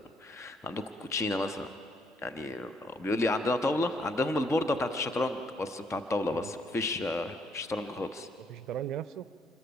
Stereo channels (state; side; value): normal; both; correlation 0.70